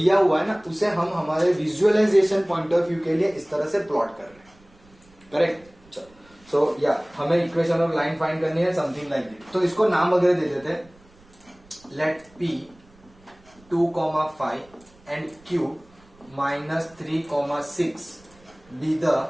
हुआ है ना उसे हम हमारे विजुअलाइजेशन पॉइंट ऑफ व्यू के लिए इस तरह से प्लॉट कर रहे हैं, करेक्ट। सो या हमें इक्वेशन ऑफ लाइन फाइंड करनी है समथिंग लाइक दिस। तो इसको नाम वगैरह दे देते हैं, let P 2,5 and Q -3,6 be the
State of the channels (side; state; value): right; noise; rumble, 28 dB below the sound